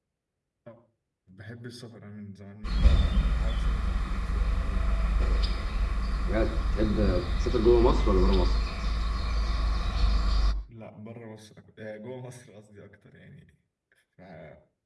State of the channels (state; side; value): identical; both; correlation 1.00